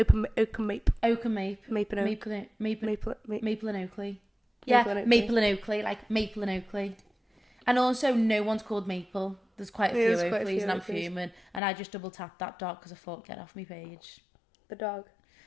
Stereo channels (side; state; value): right; drops out; at 11.6 s